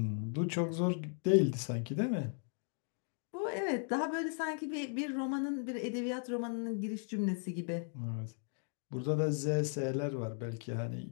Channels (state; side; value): silent; right; 53 dB below the other